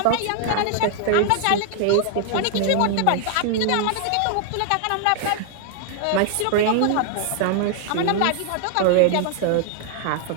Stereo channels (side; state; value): both; different; correlation 0.00